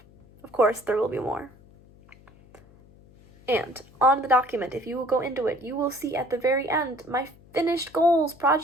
Of course, there will be more. And on the document, if you will go into it, you will see at the very end my finished goals,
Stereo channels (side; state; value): left; noise; hum, 26 dB below the sound